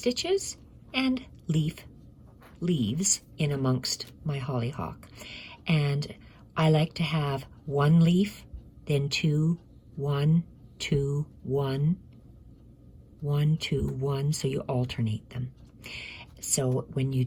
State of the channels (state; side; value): identical; both; correlation 1.00